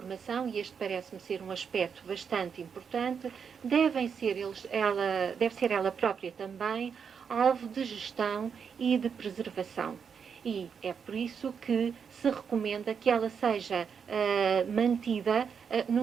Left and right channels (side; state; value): left; quieter; 6.7 dB